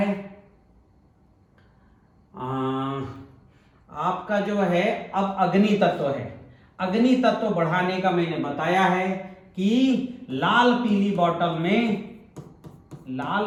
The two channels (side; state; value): both; identical; correlation 1.00